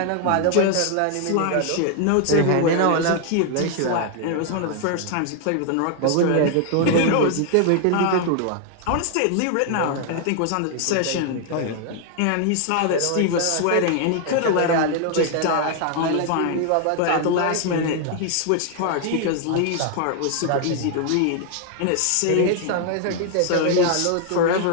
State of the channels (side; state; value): both; different; correlation 0.00